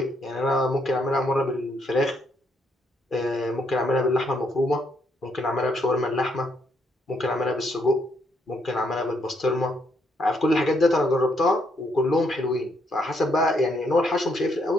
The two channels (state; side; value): normal; both; correlation 0.74